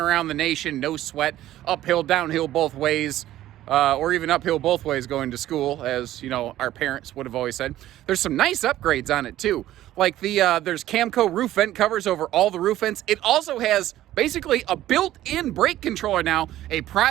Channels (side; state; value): left; quieter; 13.8 dB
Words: the nation, no sweat, uphill, downhill both ways, or even uphill both ways going to school, as you know, our parents would have always said. There's some nice upgrades on it too. Like there's Camco roof vent covers over all the roof vents. It also has basically a built-in brake controller now, a